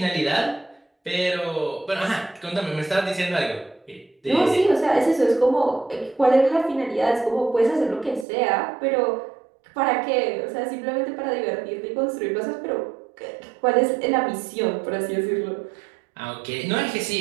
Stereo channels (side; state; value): left; drops out; at 8.2 s